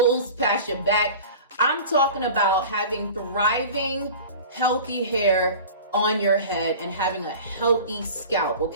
past your back. I'm talking about having thriving, healthy hair on your head and having a healthy scalp.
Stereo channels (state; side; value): inverted; both; correlation -0.39